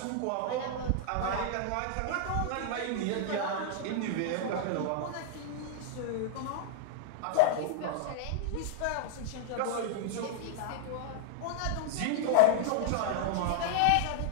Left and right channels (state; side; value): different; both; correlation -0.01